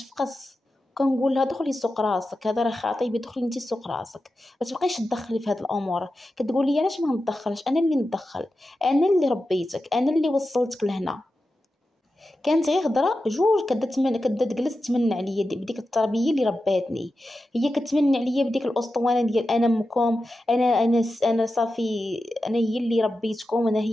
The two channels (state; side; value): normal; both; correlation 0.91